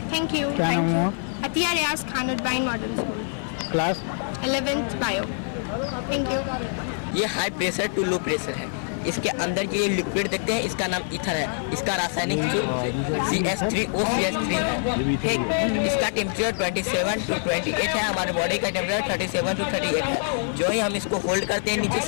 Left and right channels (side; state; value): right; silent; 56 dB below the other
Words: Thank you. अतिया रियाज खान बाइन modern school, class 11th bio. Thank you. ये high pressure to low pressure है। इसके अंदर जो ये लिक्विड देखते हैं इसका नाम ईथर है। इसका रासायनिक CH3OCH3 है। ठीक, इसका टेम्परेचर 27 to 28 है। हमारे बॉडी का टेम्परेचर 37 to 38 है। जो ही हम इसको होल्ड करते हैं नीचे